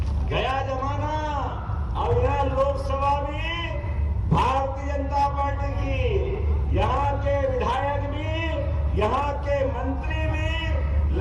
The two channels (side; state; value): both; identical; correlation 1.00